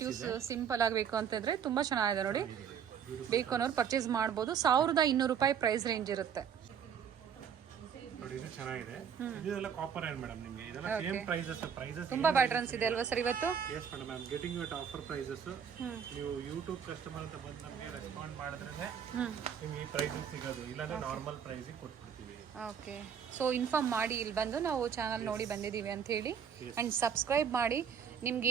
ಇದೆ. ಸಿಂಪಲ್ ಆಗಬೇಕು ಅಂತಂದ್ರೆ ತುಂಬಾ ಚೆನ್ನಾಗಿದೆ ನೋಡಿ. ಬೇಕು ಅನ್ನೋರು ಪರ್ಚೇಸ್ ಮಾಡ್ಬೋದು. 1,200 ರೂಪಾಯಿ ಪ್ರೈಸ್ ರೇಂಜ್ ಇರುತ್ತೆ ನೋಡಿ. ಇದು ಚೆನ್ನಾಗಿದೆ. ಇದೆಲ್ಲ ಕಾಪರ್ ಏನ್ ಮೇಡಮ್ ನಿಮಗೆ. ಇದೆಲ್ಲ ಸೇಮ್ ಪ್ರೈಸಸ್. ತುಂಬಾ ಪ್ಯಾಟರ್ನ್ಸ್ ಇದೆ ಅಲ್ವಾ ಸರ್ ಇವತ್ತು? Yes madam, I am getting you at offer prices. ನೀವು ಯೂಟ್ಯೂಬ್ ಕಸ್ಟಮರ್ ಅಂತ ಬಂದು ನಮಗೆ ರೆಸ್ಪಾಂಡ್ ಮಾಡಿದ್ರೆ ನಿಮ್ಗೆ ಈ ಪ್ರೈಸಿಗೆ ಸಿಗೋದು. ಇಲ್ಲಾಂದ್ರೆ ನಾರ್ಮಲ್ ಪ್ರೈಸಿಗೆ ಕೊಟ್ಬಿಡ್ತೀವಿ. ಓಕೆ. ಸೊ ಇನ್ಫಾರ್ಮ್ ಮಾಡಿ ಇಲ್ಲಿ ಬಂದು ನಾವು ಚಾನಲ್ ನೋಡಿ ಬಂದಿದ್ದೀವಿ ಅಂತ ಹೇಳಿ. ಅಂಡ್ ಸಬ್ಸ್ಕ್ರೈಬ್ ಮಾಡಿ. ನಿಮ್ಗೆ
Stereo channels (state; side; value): quieter; left; 7.6 dB